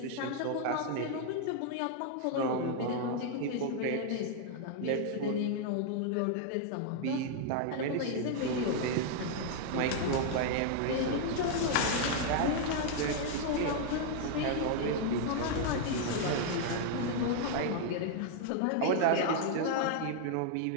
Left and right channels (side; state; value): both; different; correlation 0.00